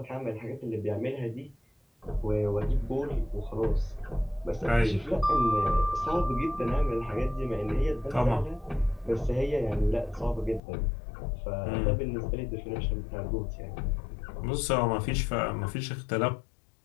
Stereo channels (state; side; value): drops out; right; at 10.6 s